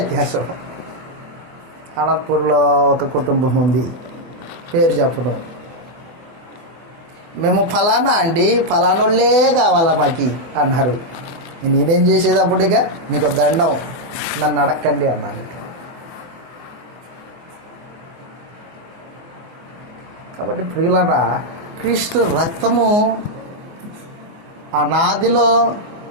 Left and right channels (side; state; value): left; late; 24 ms